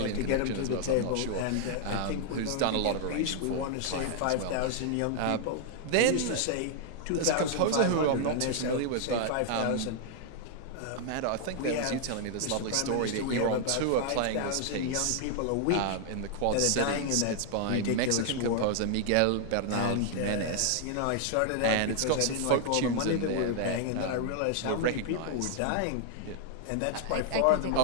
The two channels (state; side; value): different; both; correlation 0.00